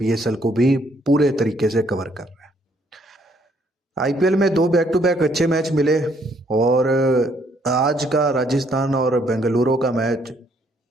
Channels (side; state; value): both; normal; correlation 0.68